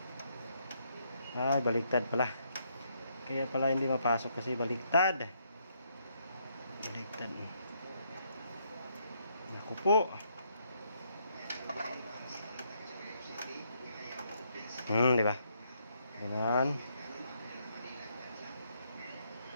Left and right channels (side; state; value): both; inverted; correlation -0.74